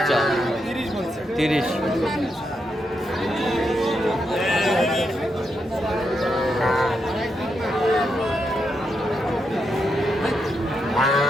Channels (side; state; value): both; normal; correlation 0.83